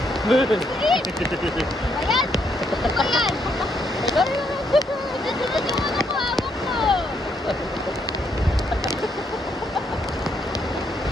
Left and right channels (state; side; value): normal; both; correlation 0.74